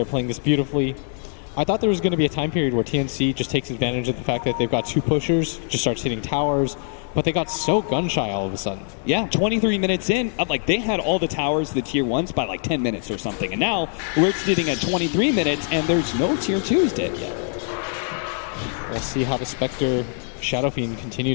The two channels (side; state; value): right; silent; 55 dB below the other